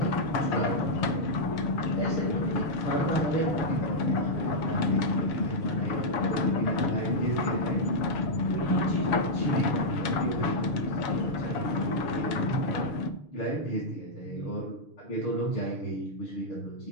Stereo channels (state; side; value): late; right; 6.5 ms